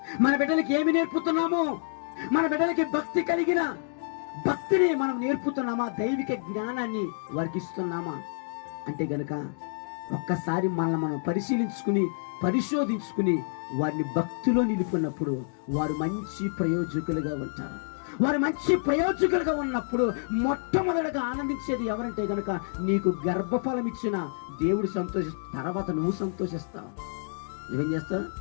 మన బిడ్డలకి ఏమి నేర్పుతున్నాము? మన బిడ్డలకి భక్తి కలిగిన భక్తిని మనం నేర్పుతున్నామా? దైవిక జ్ఞానాన్ని వారికి ఇస్తున్నామా? అంటే గనక ఒక్కసారి మనల్ని మనం పరిశోధించుకుని వారిని భక్తిలో నిలుపుకున్నప్పుడు వారు మంచి ప్రయోజకులుగా ఉంటారు. వారు మంచి ప్రయోజకులుగా ఉన్నప్పుడు మొట్టమొదటిగా ఆనందించేది ఎవరంటే గనక నీకు గర్భఫలం ఇచ్చిన దేవుడు తర్వాత నువ్వు సంతోషిస్తావు. నువ్వేం చేస్తావు?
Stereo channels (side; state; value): right; silent; digital silence